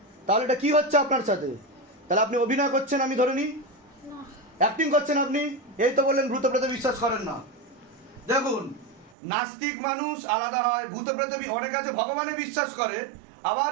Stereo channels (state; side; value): drops out; left; at 9.2 s